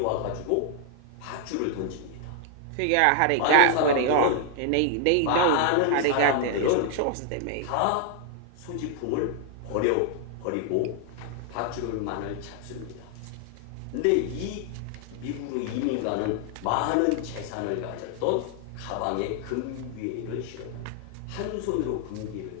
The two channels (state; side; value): different; both; correlation 0.00